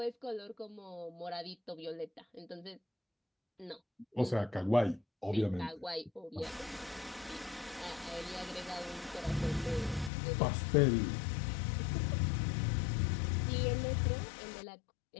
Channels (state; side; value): drops out; right; at 10.1 s